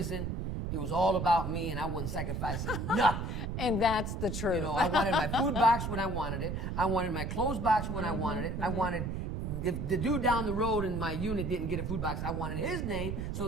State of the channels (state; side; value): noise; right; rumble, 3 dB below the sound